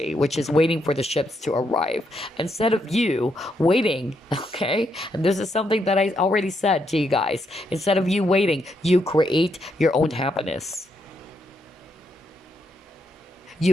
which is waiting for the ships to arrive. Instead of you waiting, okay? And this is something that I already said to you guys. Instead of you waiting, you create your own happiness.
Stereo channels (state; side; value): normal; both; correlation 0.78